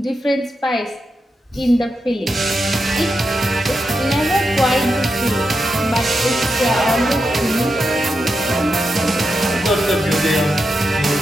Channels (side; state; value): both; normal; correlation 0.87